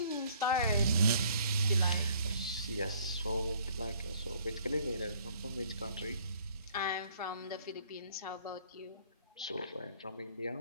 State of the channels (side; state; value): both; inverted; correlation -0.60